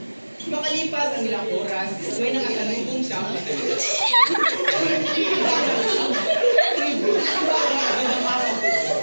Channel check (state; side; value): inverted; both; correlation -1.00